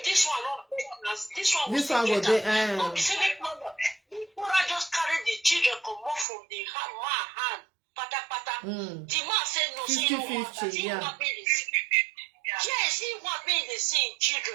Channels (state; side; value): drops out; left; at 6.2 s